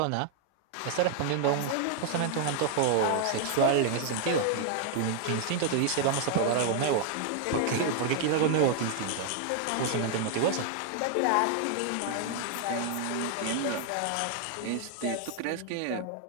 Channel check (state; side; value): different; both; correlation 0.00